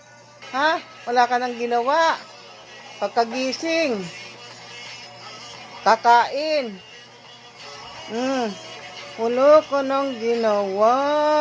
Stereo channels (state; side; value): identical; both; correlation 1.00